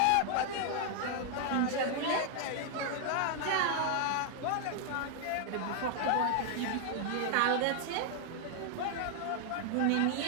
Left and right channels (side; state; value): both; different; correlation 0.00